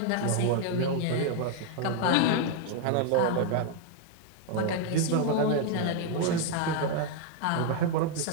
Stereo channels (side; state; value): both; different; correlation 0.00